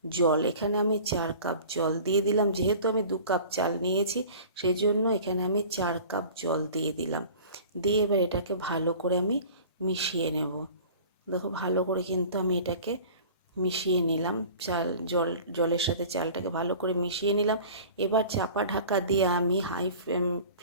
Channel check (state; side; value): inverted; both; correlation -0.42